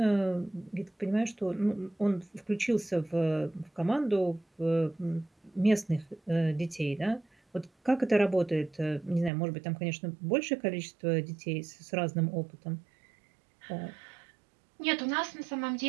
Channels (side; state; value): left; drops out; at 9.3 s